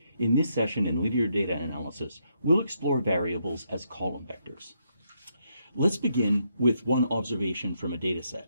In this session in linear data analysis, we'll explore variables as column vectors. Let's begin with one observation from a data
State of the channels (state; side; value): inverted; both; correlation -0.77